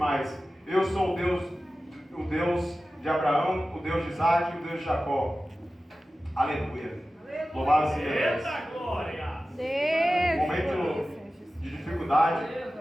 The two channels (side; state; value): both; normal; correlation 0.95